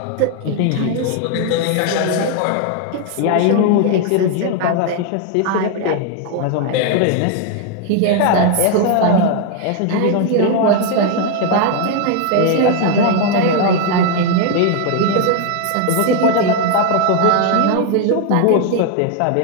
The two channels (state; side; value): different; both; correlation 0.00